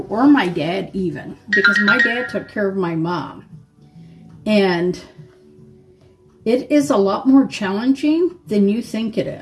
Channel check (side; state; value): both; identical; correlation 1.00